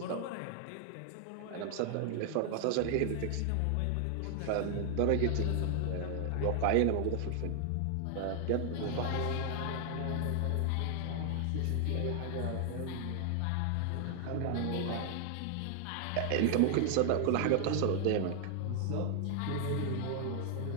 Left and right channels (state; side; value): different; both; correlation 0.00